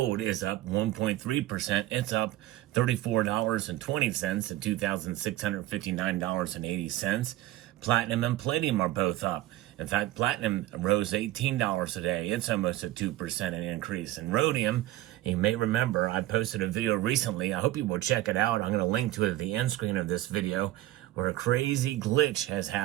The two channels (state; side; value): quieter; left; 15.9 dB